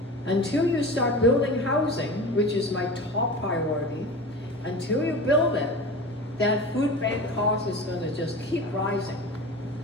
Until you start building housing, which is my top priority, until you build it, that food bank cost is going to just keep rising.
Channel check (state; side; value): normal; both; correlation 0.32